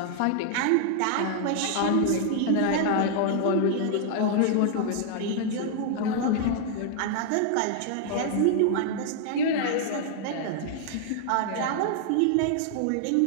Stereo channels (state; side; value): different; both; correlation 0.00